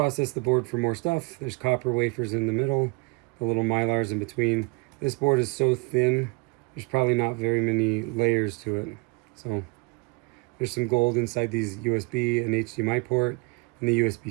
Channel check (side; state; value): left; quieter; 28.8 dB